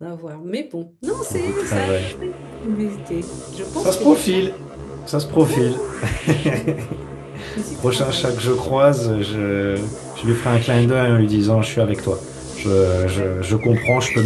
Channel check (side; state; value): both; identical; correlation 1.00